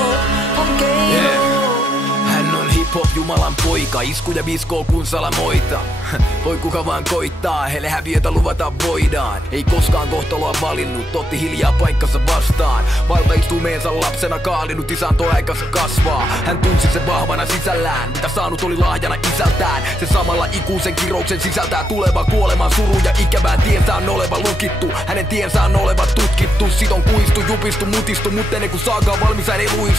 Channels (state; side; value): normal; both; correlation 0.80